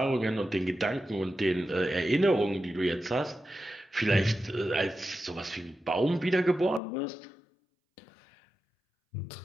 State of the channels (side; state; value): right; drops out; at 6.8 s